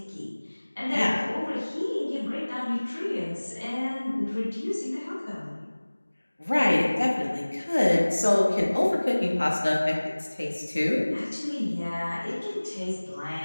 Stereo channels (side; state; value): both; inverted; correlation -1.00